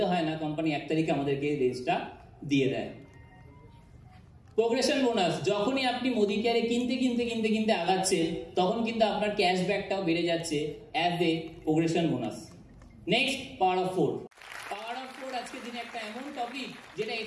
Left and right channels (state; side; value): identical; both; correlation 1.00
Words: হয় না, কোম্পানি 1 তারিখে আমাদেরকে রেঞ্জটা দিয়ে দেয়। প্রোগ্রেশন বোনাস, যখনই আপনি মোদি কেয়ারে কিনতে কিনতে কিনতে কিনতে আগাচ্ছেন তখন কিন্তু আপনার ক্যাশব্যাকটাও বেড়ে যাচ্ছে as a progression bonus. Next, power of 4। Power of 4 আজকের দিনে একটা এমন টপিক যেটা